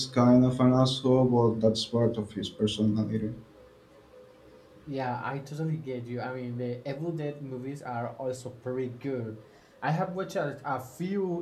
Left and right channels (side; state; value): both; identical; correlation 1.00